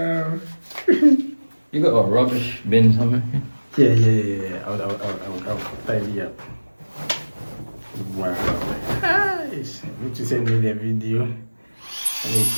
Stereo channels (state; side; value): inverted; both; correlation -1.00